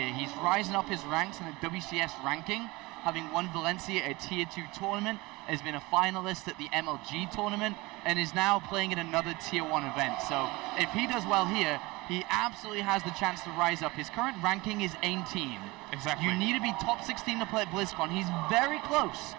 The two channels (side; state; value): left; quieter; 22.6 dB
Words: He's rising up his ranks in the WCS ranking, having won Valencia, a Tier 2 tournament, has been a finalist at the MLG tournament, and is now playing in another Tier 1 event. So if he does well here, he absolutely has the chance to rise up. His current ranking is 18. Exactly. You need to be top 16 to play at BlizzCon. He's very close.